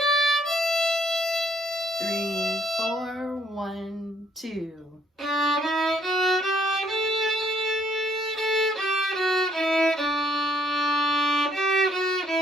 3, 4, 1, 2.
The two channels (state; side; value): normal; both; correlation 0.67